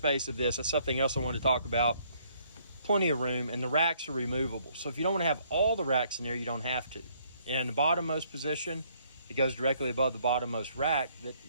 of this is something else I want to talk about. Plenty of room, and the racks are removable. So if you don't want to have all the racks in there, you don't have to. And the bottommost position, it goes directly above the bottommost rack that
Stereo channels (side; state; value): both; inverted; correlation -0.66